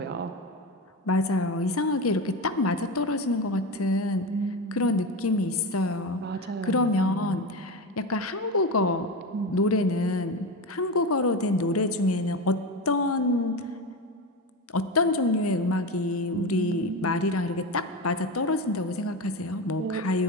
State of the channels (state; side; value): normal; both; correlation 0.21